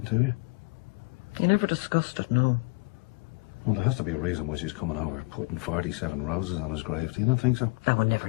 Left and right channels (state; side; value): quieter; right; 27.7 dB